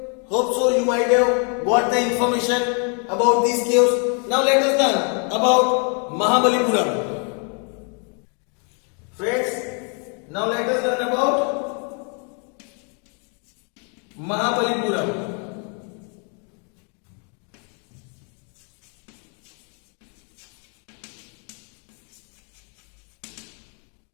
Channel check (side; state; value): right; quieter; 39.4 dB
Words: hope so you might have got the information about these caves. Now let us learn about Mahabalipuram. Friends, now let us learn about Mahabalipuram.